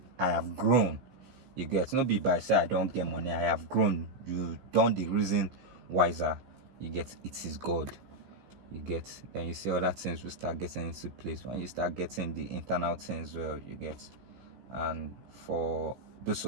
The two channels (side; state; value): left; late; 15 ms